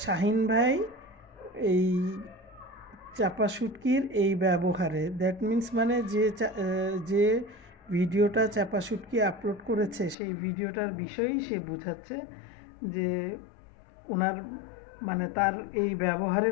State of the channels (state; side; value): drops out; right; at 10.2 s